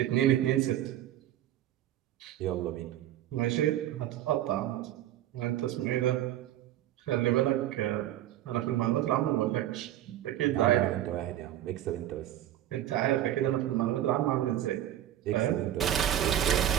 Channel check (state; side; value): quieter; left; 12.3 dB